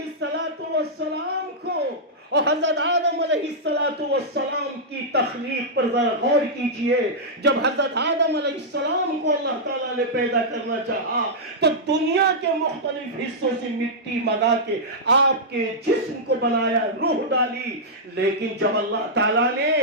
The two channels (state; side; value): normal; both; correlation -0.09